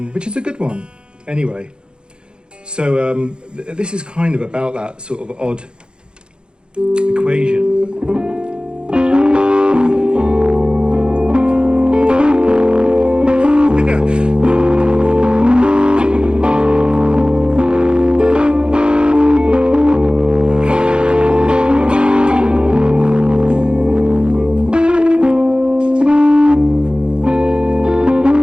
which is a good one. Anyway, so this is kind of about that sort of odd equation.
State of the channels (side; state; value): left; late; 0.050 ms